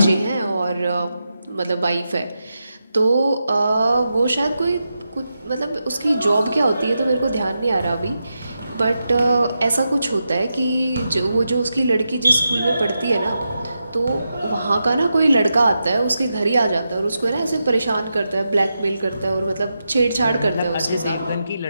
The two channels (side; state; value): both; inverted; correlation -0.88